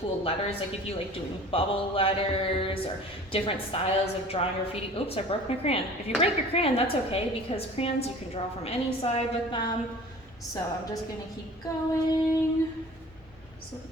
letters, like if you like doing bubble letters or different styles of drawing graffiti. Oops, I broke my crayon. If you break your crayon, that's okay because crayons you can draw from any side with them. So I'm just gonna keep going. So the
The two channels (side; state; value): both; normal; correlation 0.44